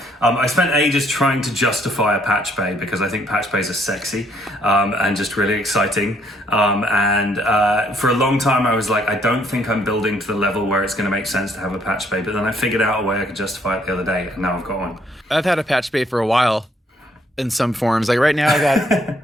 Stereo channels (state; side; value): normal; both; correlation 0.67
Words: I spent ages trying to justify a patch bay because I think patch bays are sexy and just really exciting. For a long time, I was like, I don't think I'm building to the level where it's going to make sense to have a patch bay. But then I figured out a way I could justify it the other day, and now I've got one. I've had a patch bay for a while in some forms. Like right now,